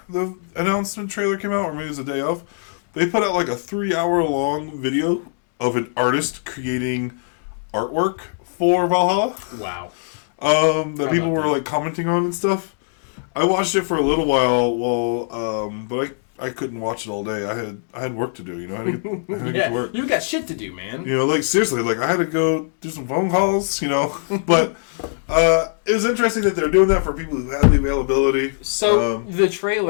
the announcement trailer came out, or maybe it was the day of, they put out like a 3-hour-long video of an artist creating artwork for Valhalla. Wow. That people were like commenting on and stuff. I watched it for a little while, but I couldn't watch it all day. I had work to do, you know. I had to get to work. You got shit to do, man. You know, like seriously, like I had to go do some phone calls, you know. But it was interesting that they're doing that for people who have the availability. So the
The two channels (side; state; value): right; silent; digital silence